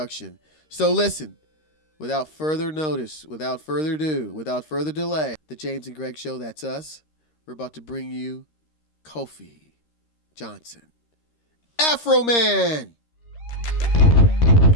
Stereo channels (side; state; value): right; late; 13 ms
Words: So listen, without further notice, without further ado, without further delay, the James and Greg Show, that's us. We're about to bring you Kofi Johnson. Afro Man!